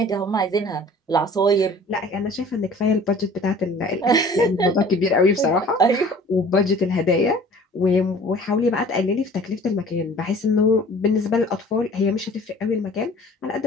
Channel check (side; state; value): both; normal; correlation 0.48